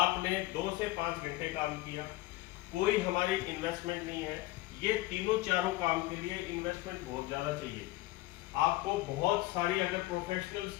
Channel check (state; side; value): quieter; right; 18.6 dB